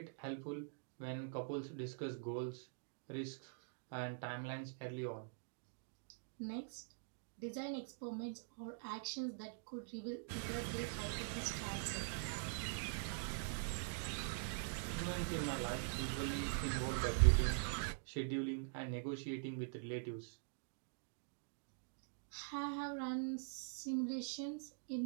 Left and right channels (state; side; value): silent; left; digital silence